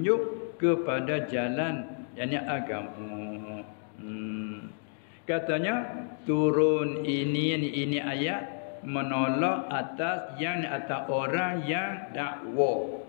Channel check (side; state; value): right; silent; digital silence